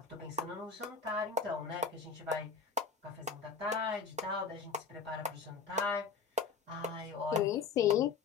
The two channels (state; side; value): quieter; right; 5.4 dB